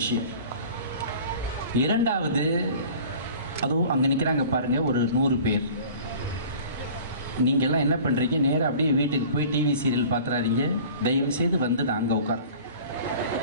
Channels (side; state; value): both; inverted; correlation -0.44